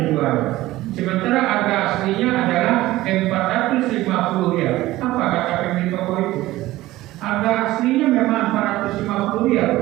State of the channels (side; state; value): left; quieter; 17.0 dB